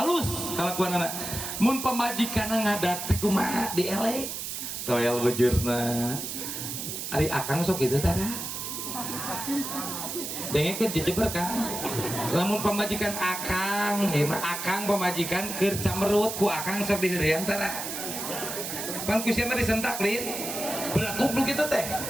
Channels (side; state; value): right; noise; hiss, 5 dB below the sound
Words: kalakuanana. Mun pamajikanna ngadat teh kumaha dielek. Toel bujurna. Ari akang sok kitu tara. Dengekeun dijeber Kang. Lamun pamajikan akang, akang pamajikan keur camerut ku akang sok diheureun tara. Pan ku sia mah disentak lin. Belah goblok kitu teh.